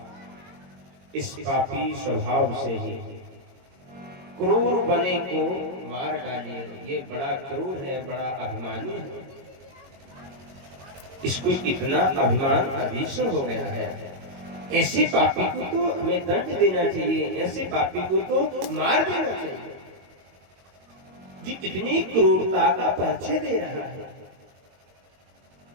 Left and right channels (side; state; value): left; late; 22 ms